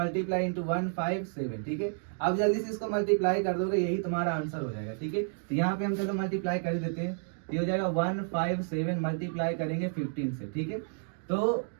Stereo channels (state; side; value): silent; left; 56 dB below the other